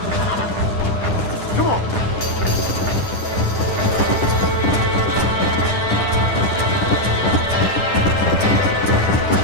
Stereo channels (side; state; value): right; late; 10 ms